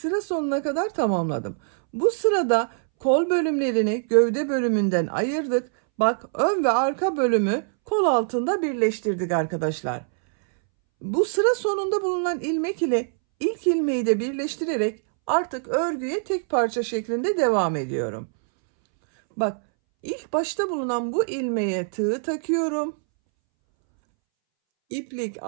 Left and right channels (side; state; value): left; silent; 63 dB below the other